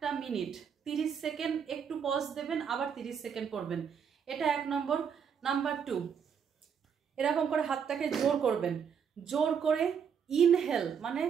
মিনিট 30 সেকেন্ড একটু পজ দেবেন, আবার 30 সেকেন্ড করবেন। এটা 1 নম্বর। নাম্বার 2, এরকম করে হাতটাকে জোর করবেন। জোর করে ইনহেল মানে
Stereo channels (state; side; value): quieter; left; 7.2 dB